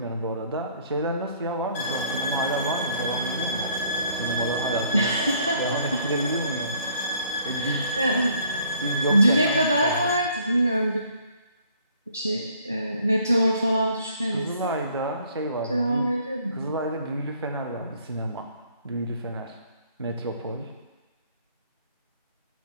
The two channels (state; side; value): inverted; both; correlation -0.61